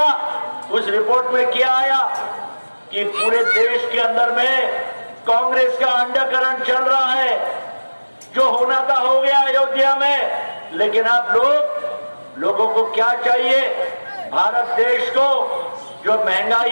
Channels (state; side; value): inverted; both; correlation -1.00